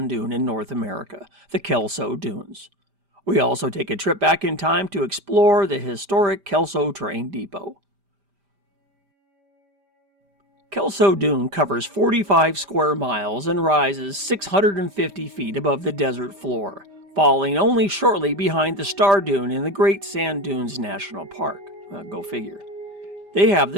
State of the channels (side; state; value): left; late; 5.0 ms